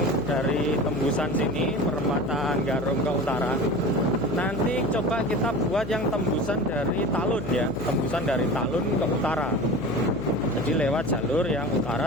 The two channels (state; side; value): noise; left; hum, 10 dB below the sound